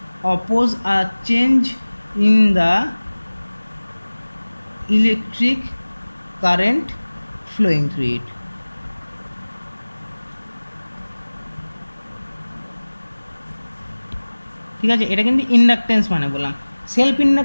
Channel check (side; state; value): both; inverted; correlation -1.00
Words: oppose a change in the electric current flowing through it। ঠিক আছে, এটা কিন্তু ইন্ডাকটেন্স মানে বললাম। সেলফ